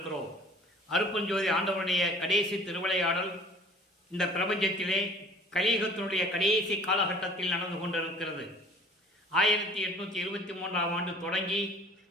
அருட்பெருஞ்சோதி ஆண்டவருடைய கடைசி திருவிளையாடல் இந்த பிரபஞ்சத்திலே கலியுகத்தினுடைய கடைசி காலகட்டத்தில் நடந்து கொண்டிருக்கிறது. 1823ஆம் ஆண்டு தொடங்கி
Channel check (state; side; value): normal; both; correlation 0.49